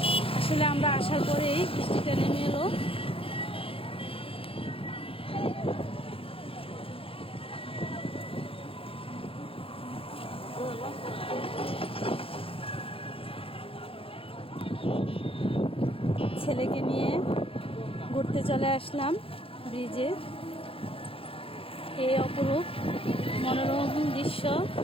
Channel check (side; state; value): right; late; 0.27 ms